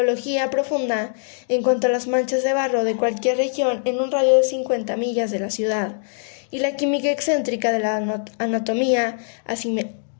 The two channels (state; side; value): silent; right; digital silence